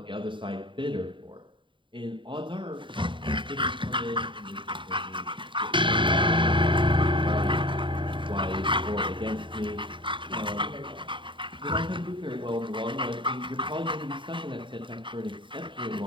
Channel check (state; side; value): late; left; 0.24 ms